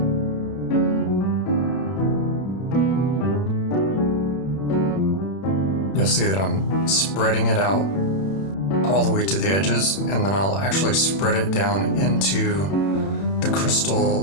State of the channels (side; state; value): right; late; 31 ms